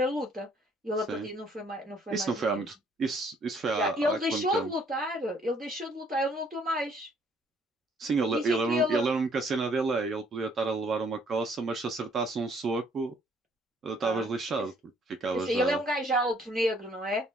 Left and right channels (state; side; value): normal; both; correlation 0.64